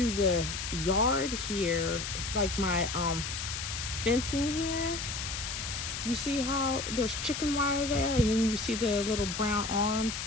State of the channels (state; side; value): noise; left; hiss, 5 dB below the sound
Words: the yard here, like my fencing here. You see how there's chicken wire there, and then you see the little brown arms,